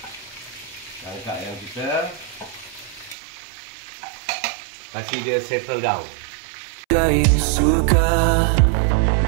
Angkat ayam kita, kasih dia settle down.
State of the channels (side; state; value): left; drops out; at 3.2 s